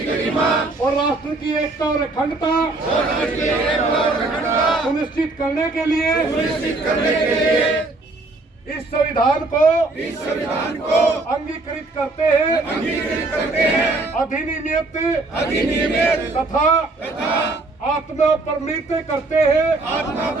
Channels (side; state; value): left; quieter; 3.2 dB